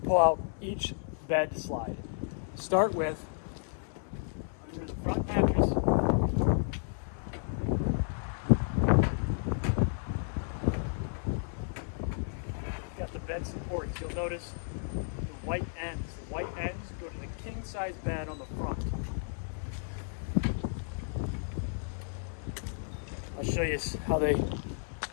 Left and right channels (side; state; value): right; silent; 56 dB below the other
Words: out each bed slide. Start with under the front mattress. Got the bed supports. You'll notice the white ends. The white ends go to the king size bed on the front. I'll show you how they